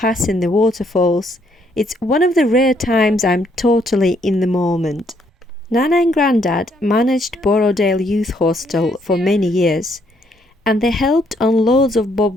the waterfalls. It's one of the rare times I'm totally in the moment. Nana and Grandad managed Borrowdale Youth Hostel for many years, and they helped on loads of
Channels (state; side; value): normal; both; correlation 0.70